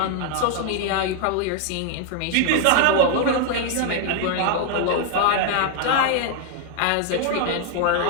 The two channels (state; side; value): different; both; correlation 0.00